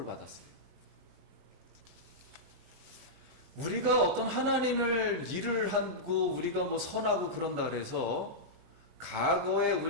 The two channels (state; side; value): late; left; 23 ms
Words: 받았어요. 우리가 어떤 하나님을 일을 하고 우리가 뭐 선하고 그런다 그래서 과거에